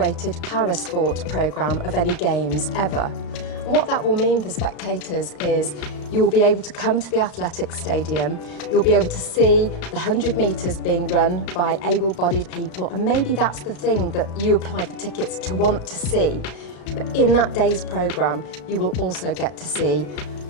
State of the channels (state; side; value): late; right; 34 ms